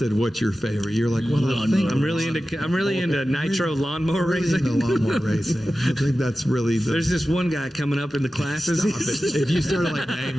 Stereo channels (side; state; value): both; normal; correlation 0.94